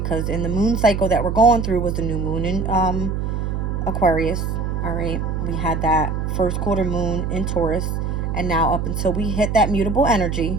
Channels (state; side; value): noise; right; hum, 2 dB below the sound